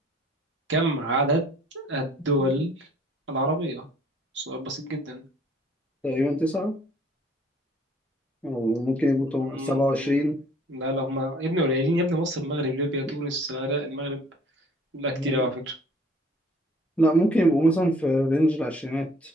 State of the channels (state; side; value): normal; both; correlation 0.57